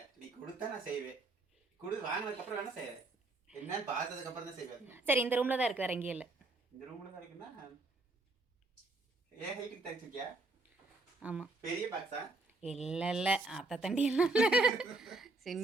நீ கொடுத்தா நான் செய்வேன். வாங்கினதுக்கு அப்புறம் வேணா செய்வேன். என்னன்னு பார்த்ததுக்கு அப்புறம் தான் செய்வேன். சரி, இந்த ரூம்ல தான் இருக்கு, வேற எங்கேயும் இல்லை. இந்த ரூம்ல தான் இருக்குன்னா ஏன் ஹைட்டுக்கு தச்சிருக்கியா? ஆமாம். பெரிய பாக்ஸா? இல்லை அத்தை தண்டி எல்லாம்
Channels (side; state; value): left; quieter; 3.2 dB